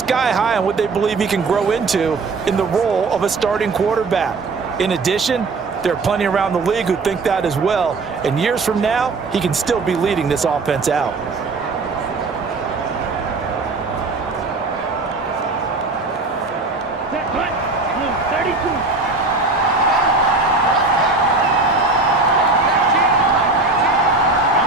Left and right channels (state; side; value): quieter; left; 3.7 dB